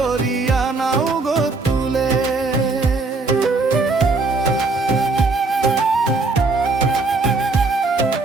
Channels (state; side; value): quieter; left; 3.6 dB